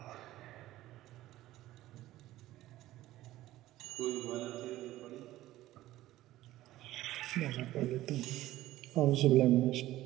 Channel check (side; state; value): left; quieter; 15.5 dB